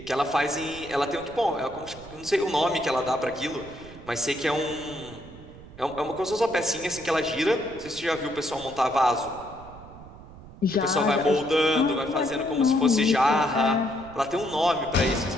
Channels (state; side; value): noise; right; rumble, 18 dB below the sound